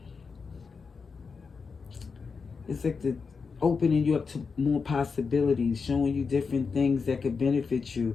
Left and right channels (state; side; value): quieter; right; 5.2 dB